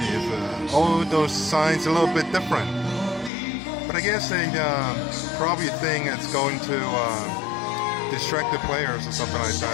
All those signs a little bit different. But I guess they probably think it's going to distract the players or something like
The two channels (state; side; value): drops out; right; at 3.3 s